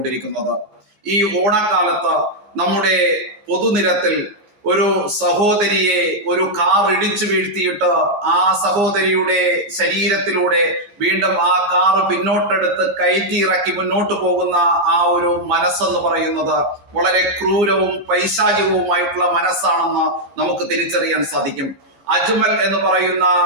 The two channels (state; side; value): late; left; 15 ms